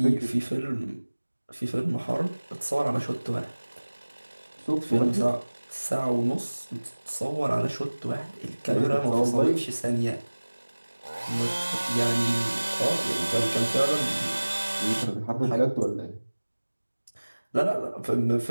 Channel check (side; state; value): both; inverted; correlation -1.00